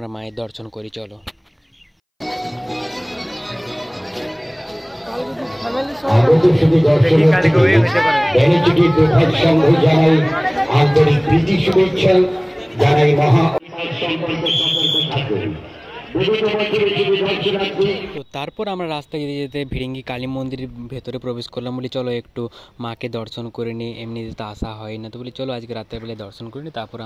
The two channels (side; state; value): both; identical; correlation 1.00